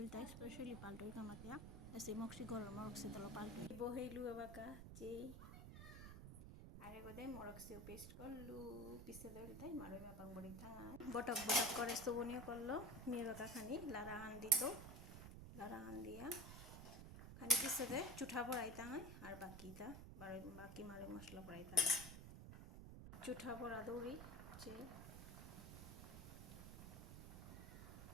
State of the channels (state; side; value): noise; right; rumble, 10 dB below the sound